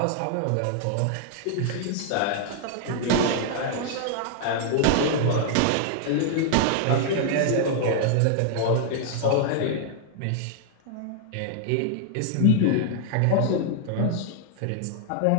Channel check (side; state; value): both; different; correlation -0.01